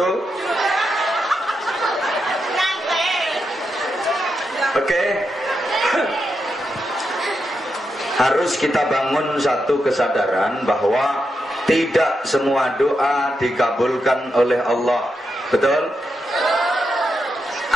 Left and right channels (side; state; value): both; normal; correlation 0.85